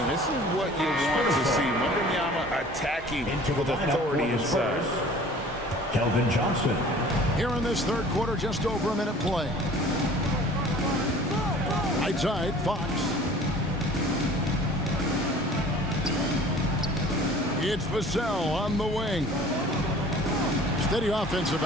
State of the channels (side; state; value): both; normal; correlation 0.47